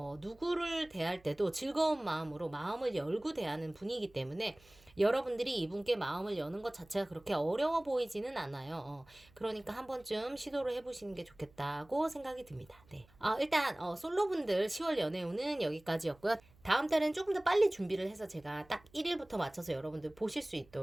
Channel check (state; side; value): noise; right; hum, 28 dB below the sound